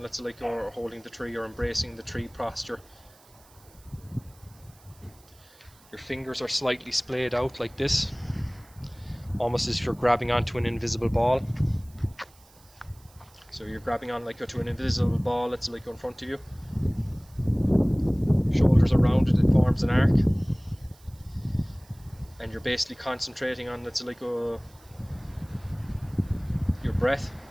say, like, or holding the tree, or embracing the tree posture. Your fingers are slightly splayed out like this, almost as if you're grabbing onto an invisible ball. So you're grabbing on like to an invisible ball that's like in front of you. Shoulders are rounded, it forms an arc. And you're basically concentrating on, let's say, like your breath,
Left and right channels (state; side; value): noise; right; hiss, 27 dB below the sound